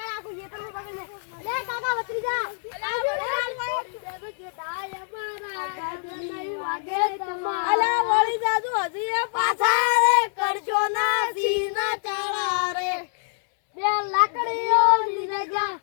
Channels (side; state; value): right; silent; 62 dB below the other